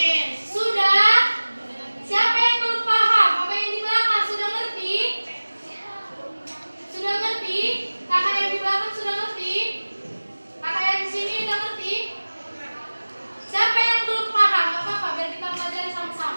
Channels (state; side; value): inverted; both; correlation -1.00